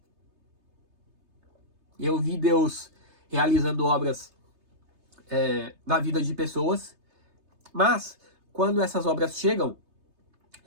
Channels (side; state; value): left; late; 3.3 ms